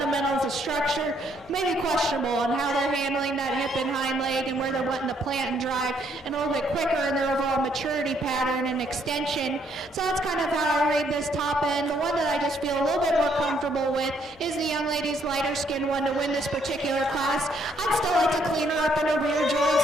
of structure, maybe questionable on how they're handling that hip and hind leg and where they're wanting to plant and drive, and a little bit quicker in their overall maturity pattern and extension. So that's kind of how I read this top end. The one that I just feel a little bit more comfortable with is the young lady's lighter skin one to win this particular class. I'd still like to clean her up in her rear joints.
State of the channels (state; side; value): normal; both; correlation 0.69